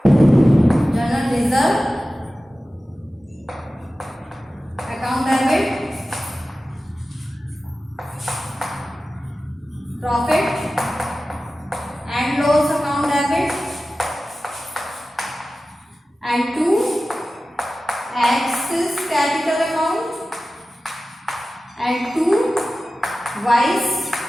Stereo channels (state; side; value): normal; both; correlation 0.95